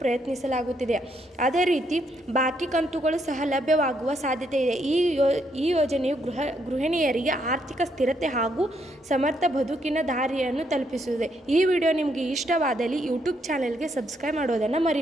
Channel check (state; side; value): normal; both; correlation 0.74